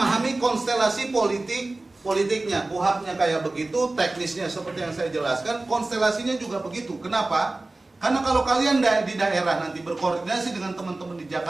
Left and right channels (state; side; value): quieter; left; 3.0 dB